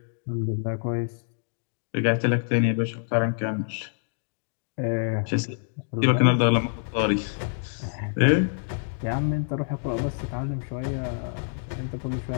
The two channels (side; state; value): right; silent; digital silence